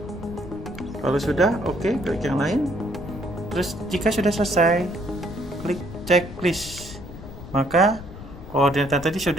Kalau sudah, oke, klik yang lain. Terus jika sudah selesai, klik checklist, maka koordinat tadi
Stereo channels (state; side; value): noise; left; rumble, 13 dB below the sound